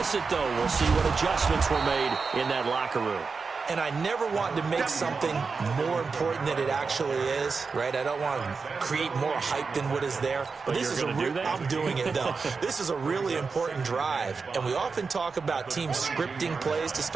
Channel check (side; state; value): left; quieter; 4.8 dB